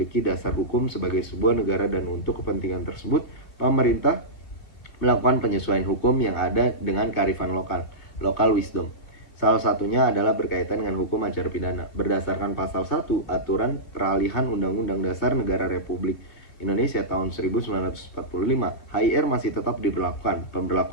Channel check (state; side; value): late; right; 3.1 ms